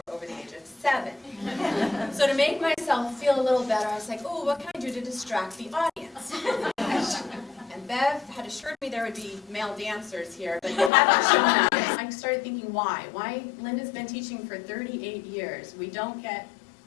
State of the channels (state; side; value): drops out; right; at 10.9 s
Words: over the age of 7. So to make myself feel a little better, I was like, oh, what can I do to distract the audience? And Bev had assured me there would be male dancers here, but they haven't shown up. I started thinking, why? Why? Linda's been teaching for 38 years. We don't get